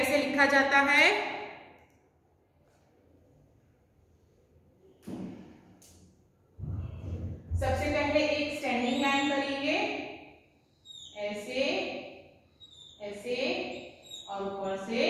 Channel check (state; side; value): identical; both; correlation 1.00